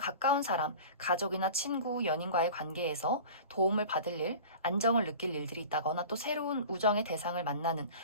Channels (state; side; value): inverted; both; correlation -0.38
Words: 사람, 가족이나 친구, 연인과의 관계에서 도움을 받을 일, 안정을 느낄 일들이 있다거나 또 새로운 우정의 대상을 만나는